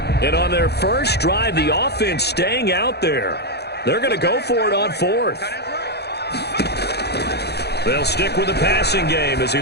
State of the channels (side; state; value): right; late; 0.48 ms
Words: And on their first drive, the offense staying out there. They're going to go for it on 4th. They'll stick with the passing game as he